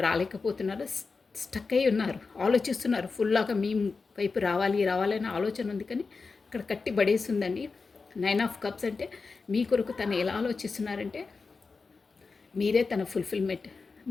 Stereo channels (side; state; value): right; quieter; 4.4 dB